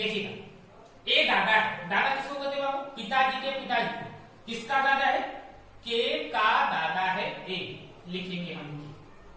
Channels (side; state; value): both; identical; correlation 1.00